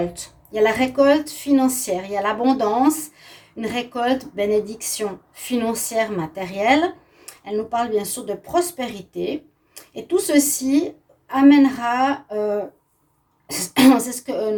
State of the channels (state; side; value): identical; both; correlation 1.00